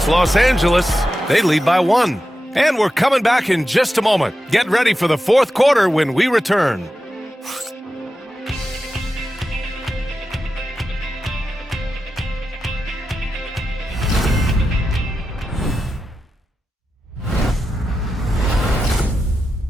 Los Angeles. They lead by 1. And we're coming back in just a moment. Get ready for the fourth quarter when we return.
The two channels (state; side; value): normal; both; correlation 0.91